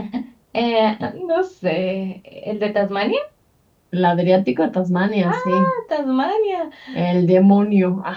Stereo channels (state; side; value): identical; both; correlation 1.00